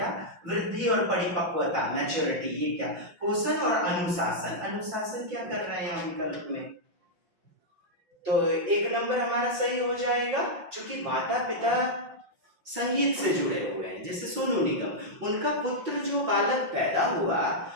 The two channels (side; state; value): left; late; 5.6 ms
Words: वृद्धि और परिपक्वता, मैच्योरिटी, ये क्या, पोषण और अनुशासन। अनुशासन क्या कर रहे हैं यहाँ विकल्प में, तो 1 नंबर हमारा सही हो जाएगा, क्योंकि माता पिता संगीत से जुड़े हुए हैं। जैसे सोनू निगम, उनका पुत्र जो बालक पैदा हुआ